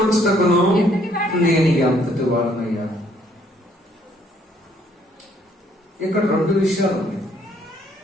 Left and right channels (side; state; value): both; normal; correlation 0.65